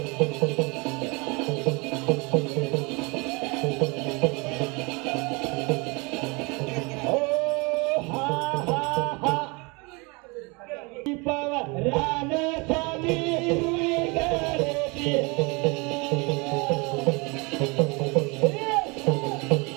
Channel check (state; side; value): quieter; left; 28.4 dB